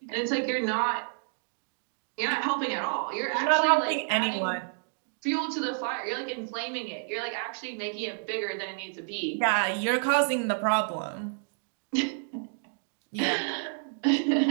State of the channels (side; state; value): left; silent; digital silence